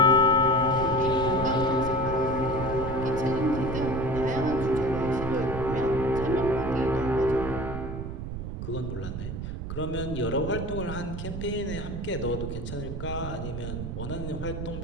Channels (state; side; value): noise; right; rumble, 6 dB below the sound